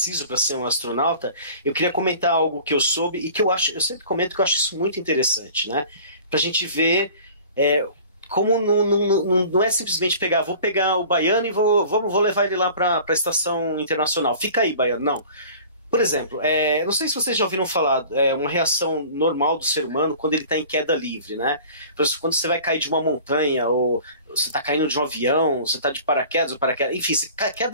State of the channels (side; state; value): both; inverted; correlation -0.45